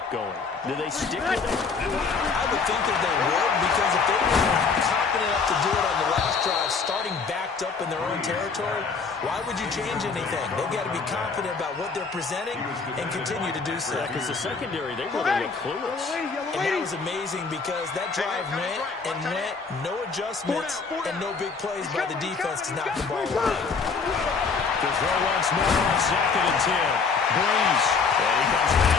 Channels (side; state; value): right; quieter; 5.0 dB